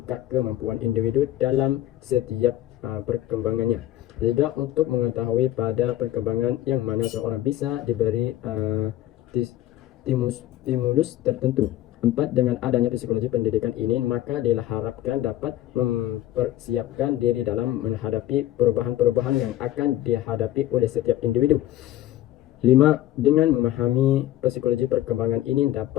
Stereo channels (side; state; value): right; quieter; 13.9 dB